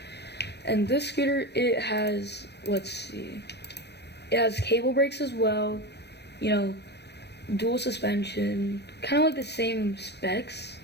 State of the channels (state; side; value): late; right; 0.49 ms